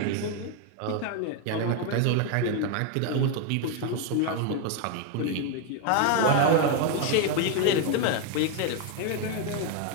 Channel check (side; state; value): both; different; correlation 0.01